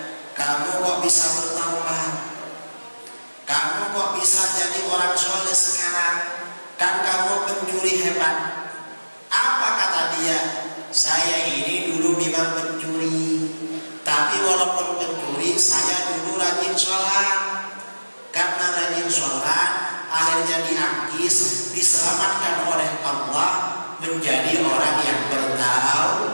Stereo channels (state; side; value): inverted; both; correlation -1.00